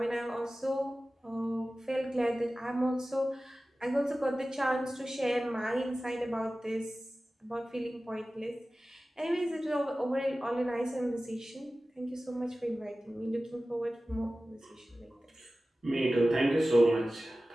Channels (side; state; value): both; normal; correlation 0.96